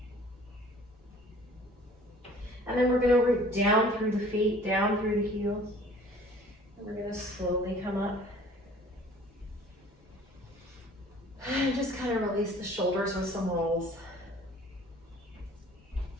And then we're going to root down through the feet, down through the heels. And we're going to slowly come up. And just kind of release the shoulders with some rolls.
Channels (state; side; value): normal; both; correlation 0.51